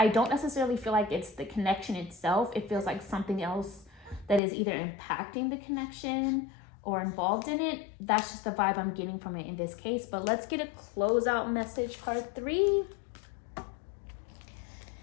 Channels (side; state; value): right; drops out; at 4.4 s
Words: don't necessarily feel like it's the connection itself. It feels like something else that is either impacting the connection or involved in it. That's just the vibe I'm getting from it in this case. But let's get a closeout message, card 3.